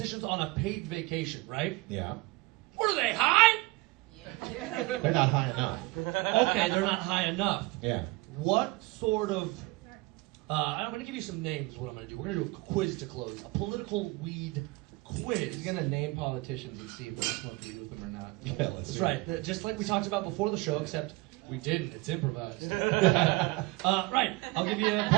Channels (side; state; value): left; quieter; 22.4 dB